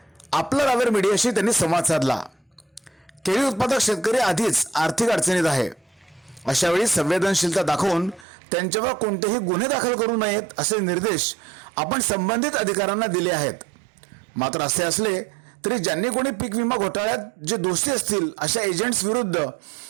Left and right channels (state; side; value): drops out; left; at 8.2 s